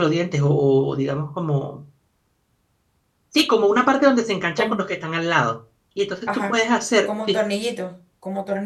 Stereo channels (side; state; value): both; identical; correlation 1.00